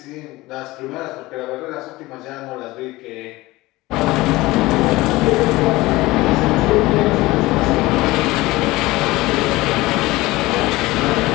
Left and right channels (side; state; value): right; quieter; 19.6 dB